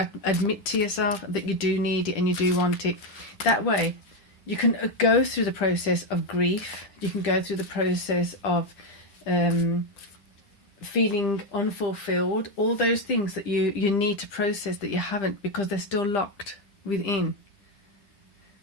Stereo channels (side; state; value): right; late; 10 ms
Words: admit to yourself that you do need it and you do want it. That way, you can go through the process of grief. You can go through the process of feeling unfulfilled. All those things that you need to process that you haven't because they're still locked within.